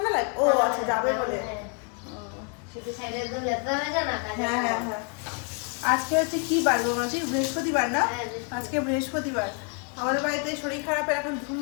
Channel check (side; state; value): right; quieter; 36.8 dB